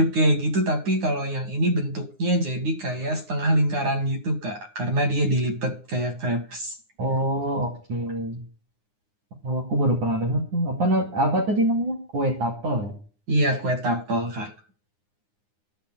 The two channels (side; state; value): left; late; 9.7 ms